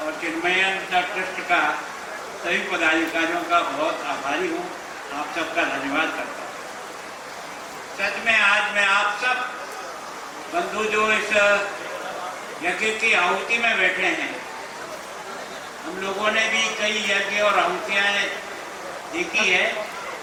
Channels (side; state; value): both; identical; correlation 1.00